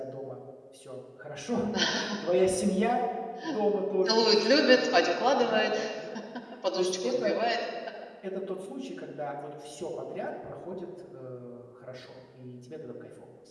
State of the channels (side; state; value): both; identical; correlation 1.00